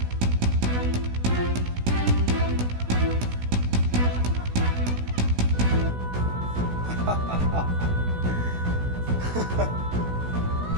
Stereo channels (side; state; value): left; late; 16 ms